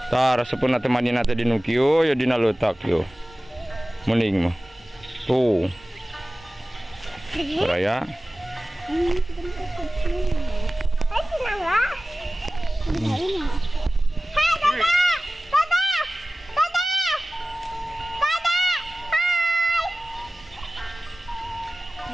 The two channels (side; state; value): both; normal; correlation 0.97